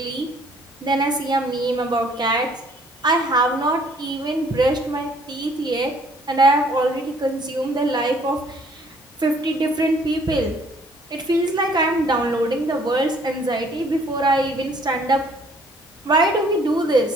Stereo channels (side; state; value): both; normal; correlation 0.60